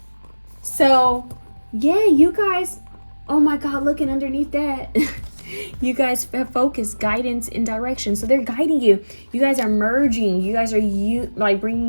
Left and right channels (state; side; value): inverted; both; correlation -1.00